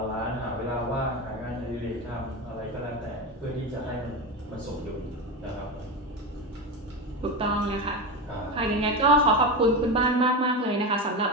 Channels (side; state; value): both; normal; correlation 0.19